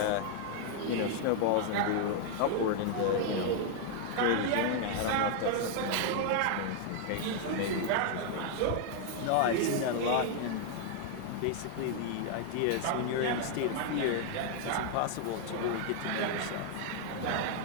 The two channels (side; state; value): both; different; correlation 0.00